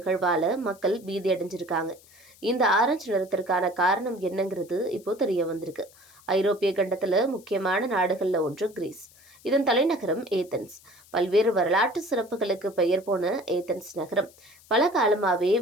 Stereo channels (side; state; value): left; noise; hiss, 26 dB below the sound